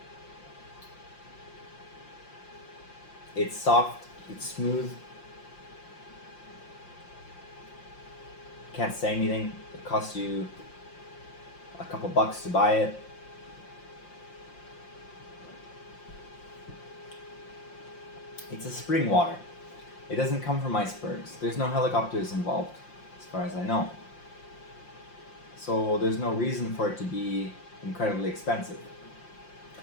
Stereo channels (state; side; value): late; right; 5.7 ms